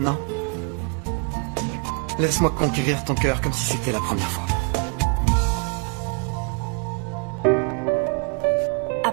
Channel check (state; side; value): quieter; left; 34.0 dB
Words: non? Laisse-moi conquérir ton cœur comme si c'était la première fois.